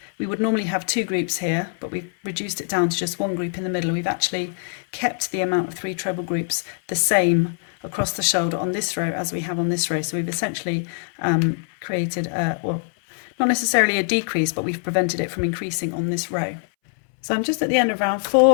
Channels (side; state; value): right; silent; 63 dB below the other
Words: would normally have 2 groups here, but we've reduced it down to just 1 group in the middle, we've actually kept the amount of 3 treble groups the same across the shoulder on this row as we have on this row. So we've essentially created a, well, not necessarily a decrease, but we've prevented it from increasing on this row. So I'm just at the end of round